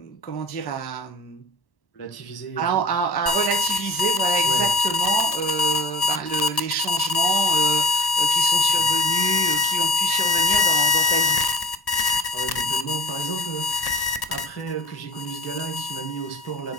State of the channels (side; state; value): right; late; 1.1 ms